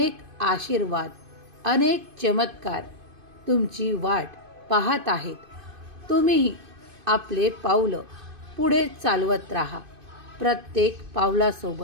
आशीर्वाद, अनेक चमत्कार तुमची वाट पाहत आहेत. तुम्हीही आपले पावलं पुढे चालवत राहा. प्रत्येक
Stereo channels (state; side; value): late; left; 2.5 ms